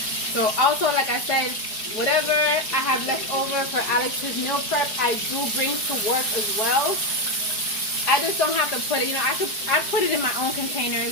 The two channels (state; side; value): late; right; 4.7 ms